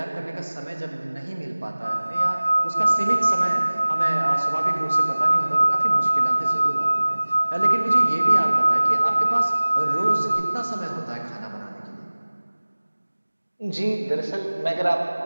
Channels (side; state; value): both; inverted; correlation -1.00